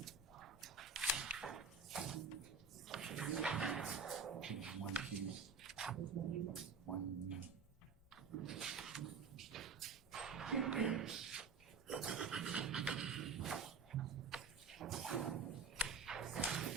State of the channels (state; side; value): quieter; left; 4.9 dB